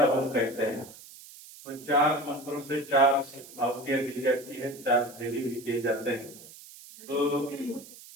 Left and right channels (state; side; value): noise; right; hiss, 18 dB below the sound